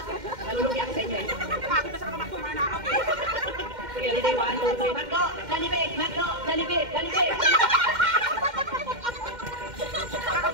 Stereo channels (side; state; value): left; late; 2.1 ms